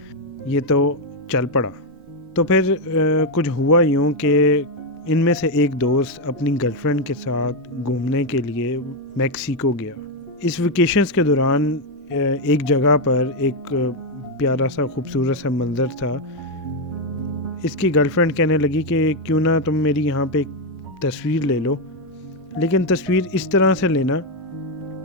یہ تو چل پڑا۔ تو پھر کچھ ہوا یوں کہ ان میں سے ایک دوست اپنی گرل فرینڈ کے ساتھ گھومنے کے لیے میکسیکو گیا۔ اس ویکیشنز کے دوران ایک جگہ پر ایک پیارا سا خوبصورت سا منظر تھا۔ اس کی گرل فرینڈ کہنے لگی کہ کیوں نہ تم میری یہاں پہ ایک تصویر لے لو، لیکن تصویر اس طرح سے لینا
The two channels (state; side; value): normal; both; correlation 0.04